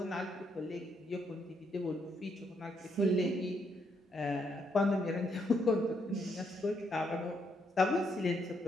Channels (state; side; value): normal; both; correlation 0.76